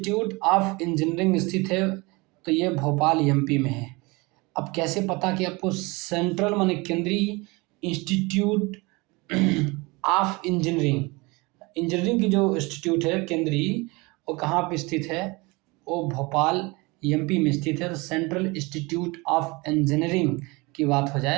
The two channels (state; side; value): quieter; left; 25.3 dB